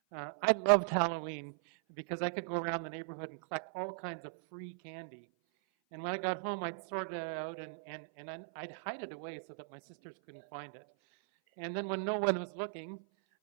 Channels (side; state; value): left; silent; 53 dB below the other